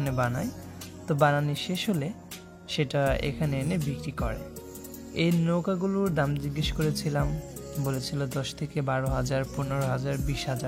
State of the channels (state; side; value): identical; both; correlation 1.00